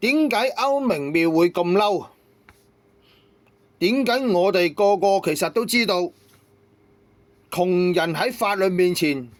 解歐明妙會咁嬲？點解我哋個個其實都知道窮人喺法律面前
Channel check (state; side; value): identical; both; correlation 1.00